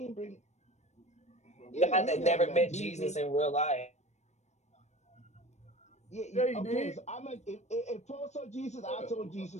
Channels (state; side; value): late; right; 0.33 ms